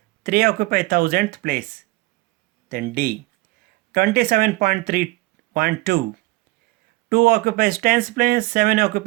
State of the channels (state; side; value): quieter; left; 21.2 dB